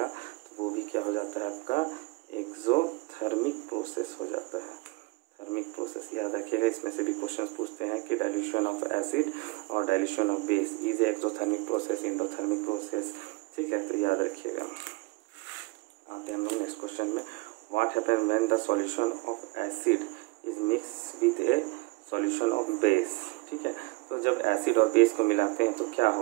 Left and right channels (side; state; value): left; quieter; 23.9 dB